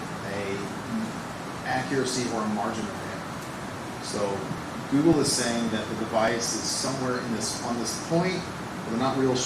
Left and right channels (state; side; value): identical; both; correlation 1.00